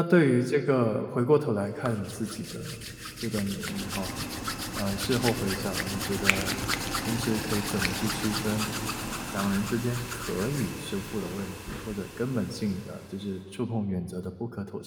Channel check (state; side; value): identical; both; correlation 1.00